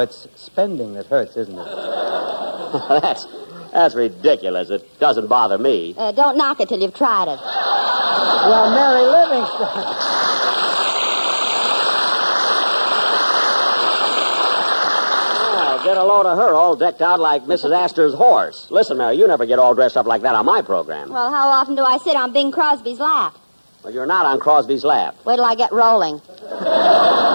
spending that hurts, isn't it? That's ridiculous. It doesn't bother me. Don't knock it till you've tried it. Well, Mary Livingston. Well, get a load of her all decked out like Mrs. Astor's horse. Listen, Mary, you never get all dressed up like that on my program. Well, how often do I sit on Bing Crosby's lap? Well, you're not on Crosby's lap. Wait till I get rolling.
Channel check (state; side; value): inverted; both; correlation -1.00